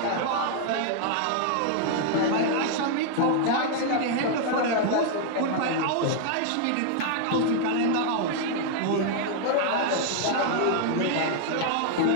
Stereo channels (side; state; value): both; different; correlation 0.00